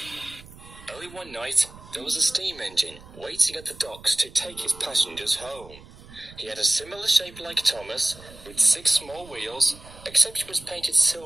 one night, there was a steam engine waiting at the docks to take his passengers home. He had a similar shape like Thomas, with 6 small wheels, except he was painted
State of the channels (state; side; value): noise; right; rumble, 19 dB below the sound